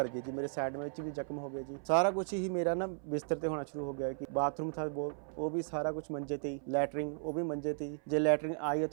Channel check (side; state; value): left; silent; 54 dB below the other